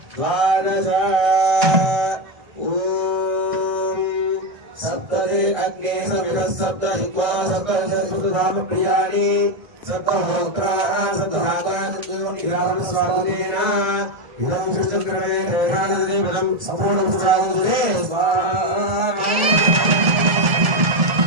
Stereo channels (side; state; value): left; late; 1.9 ms